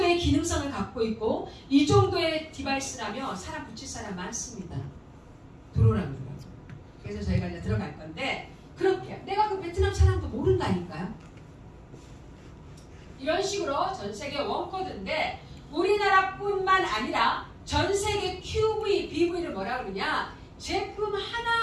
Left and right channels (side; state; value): both; identical; correlation 1.00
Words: 기능성을 갖고 있고 이 정도의 디바이스라면 사람 붙일 사람 많습니다. 들어오라고 그러더라고요. 그래서 저희가 이제 들어갈 건데 그렇게 내가 그 베트남 사람도 모른다니까요. 이런 식으로 전 세계 원코드인데 우리나라뿐만 아니라 전 세계 QV, BV를 뭐라 그러냐 제품